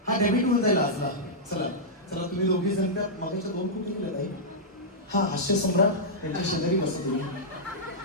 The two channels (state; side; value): normal; both; correlation -0.11